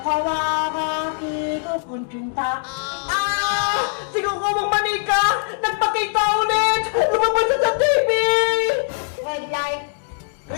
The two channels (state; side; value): silent; right; digital silence